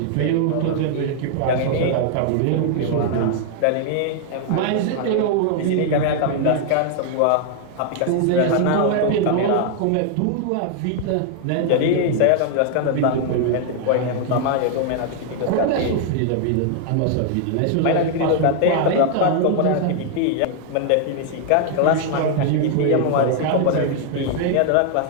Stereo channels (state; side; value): different; both; correlation 0.00